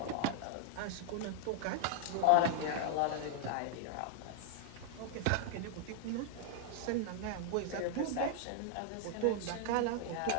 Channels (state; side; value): different; both; correlation -0.01